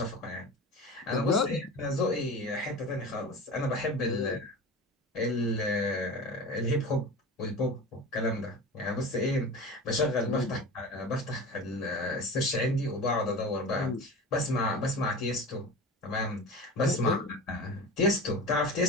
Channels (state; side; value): normal; both; correlation 0.32